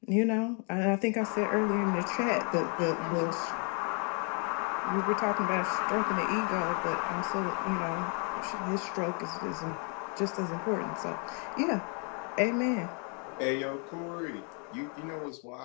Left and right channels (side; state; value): right; quieter; 38.9 dB